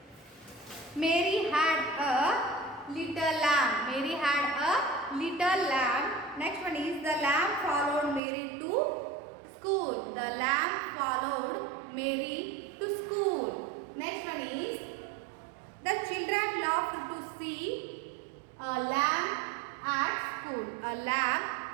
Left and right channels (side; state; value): left; drops out; at 8.2 s